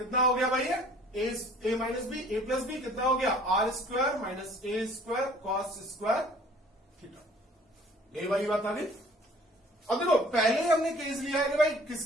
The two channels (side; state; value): both; normal; correlation 0.53